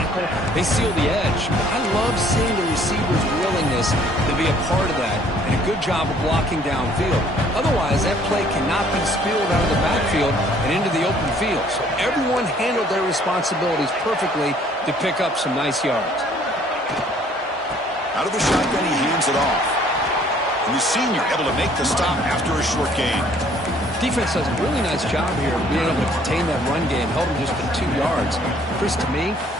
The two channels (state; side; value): normal; both; correlation 0.59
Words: They seal the edge. I love seeing the receivers' willingness to be a part of that, and a good job of blocking downfield. Otherwise, that play cannot be spilled out of the backfield and into the open field. So everyone handled their responsibilities perfectly to pick up some nice yards. Out of the shotgun, he hands it off. And the senior able to make the stop after a short gain. Defense does a really nice job here of being able to contain that run game, held him just to 2 yards. Chris, to me,